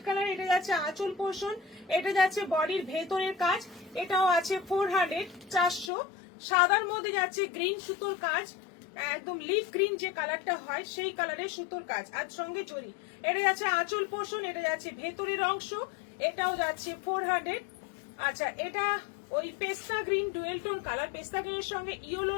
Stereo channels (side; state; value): right; drops out; at 5.9 s